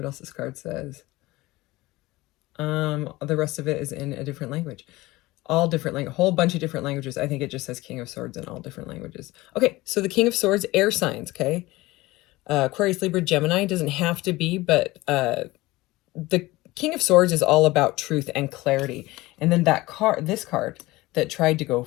else this card says. The rest of it is in a different language. All different language, a whole bunch of different languages. I think it just says King of Swords in all different languages. Okay, so the King of Swords, air signs, okay? Aquarius, Libra, Gemini, doesn't have to be, but the King of Swords is all about truth and clarity. And then this card that tried to go,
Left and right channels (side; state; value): right; quieter; 19.7 dB